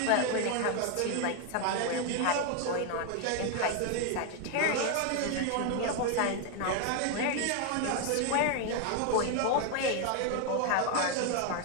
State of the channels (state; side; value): different; both; correlation 0.01